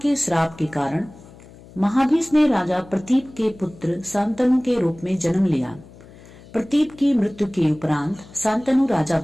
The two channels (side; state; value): left; noise; hum, 21 dB below the sound